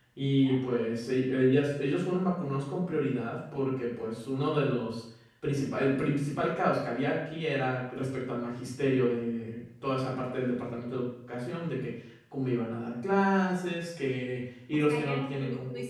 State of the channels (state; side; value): identical; both; correlation 1.00